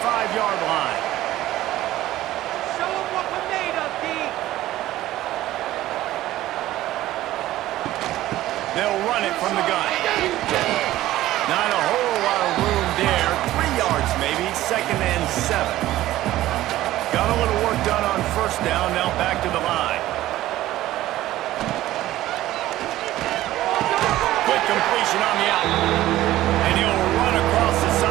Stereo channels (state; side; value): quieter; left; 15.1 dB